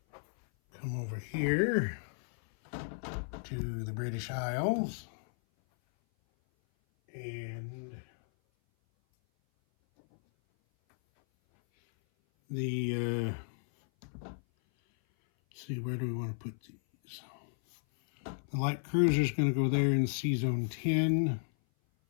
Come over here to the British Isles. And the, see, where do we want to put these? The light cruiser is going to go there in Sea Zone 10.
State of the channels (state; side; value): silent; right; 55 dB below the other